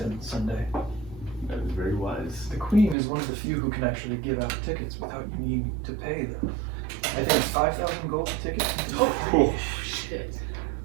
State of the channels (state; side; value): drops out; left; at 3.0 s